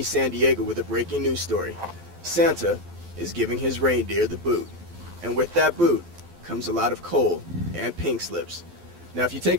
San Diego with a breaking news story. Santa is giving his reindeer the boot. And with that boot comes a lot of coal and pink slips. Now if you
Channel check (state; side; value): late; left; 12 ms